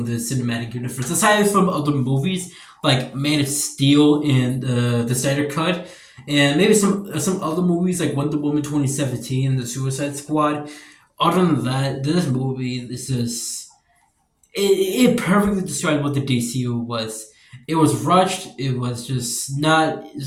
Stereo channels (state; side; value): identical; both; correlation 1.00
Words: the cinematic universe aside from other movies like Man of Steel and the Snyder Cut, and maybe some other movies like Wonder Woman 2017 and the Suicide Squad. Other than that, this movie it perfectly described what the DCU was. It was rushed. It was just not